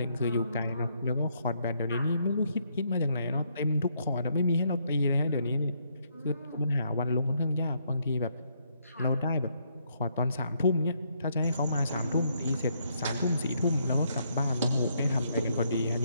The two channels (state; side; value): inverted; both; correlation -0.73